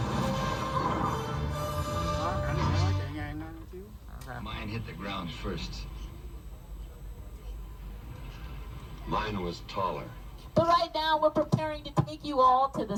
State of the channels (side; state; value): both; identical; correlation 1.00